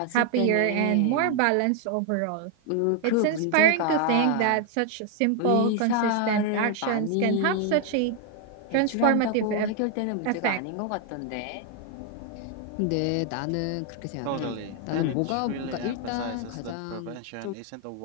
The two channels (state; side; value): different; both; correlation 0.00